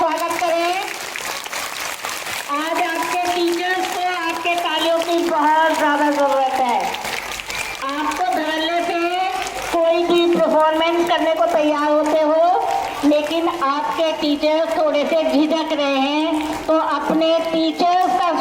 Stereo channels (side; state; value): both; identical; correlation 1.00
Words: करें। आज आपके टीचर्स को आपके तालियों की बहुत ज़्यादा ज़रूरत है। आपको धड़ल्ले से कोई भी परफॉर्मेंस करने को तैयार होते हो, लेकिन आपके टीचर्स थोड़े से झिझक रहे हैं, तो अपने टीचर्स का